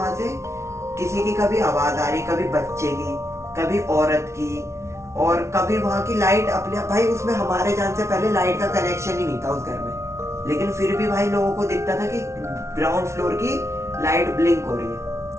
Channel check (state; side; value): late; left; 0.13 ms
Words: से किसी की कभी आवाज आ रही, कभी बच्चे की, कभी औरत की, और कभी वहां की लाइट अपने भाई, उसमें हमारे जान से पहले लाइट का कनेक्शन ही नहीं था उस घर में, लेकिन फिर भी भाई लोगों को दिखता था कि ग्राउंड फ्लोर की लाइट ब्लिंक हो रही है।